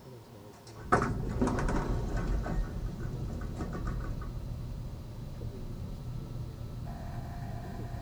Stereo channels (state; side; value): identical; both; correlation 1.00